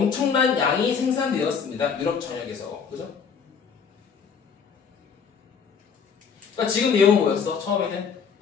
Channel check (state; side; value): quieter; right; 6.4 dB